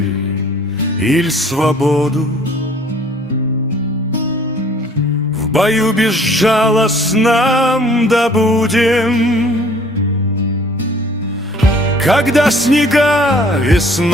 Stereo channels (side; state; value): both; normal; correlation 0.55